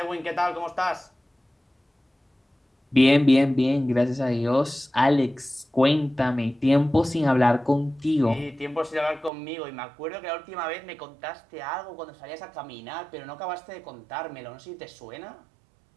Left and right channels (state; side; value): drops out; left; at 9.3 s